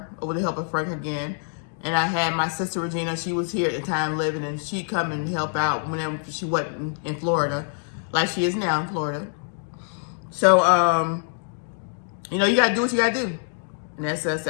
with the help of Frank again. And I had my sister Regina, she was here at the time living, and she'd come and help out whenever she wasn't in Florida, like she is now in Florida. So, you gotta do what you gotta do. And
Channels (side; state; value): right; silent; 60 dB below the other